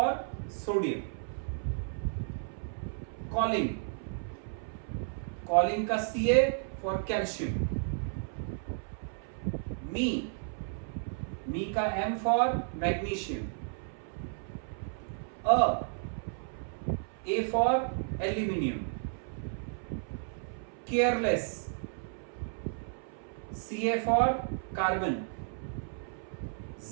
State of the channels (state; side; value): silent; left; 56 dB below the other